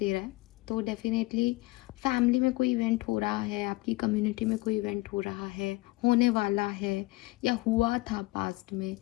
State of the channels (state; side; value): quieter; right; 21.0 dB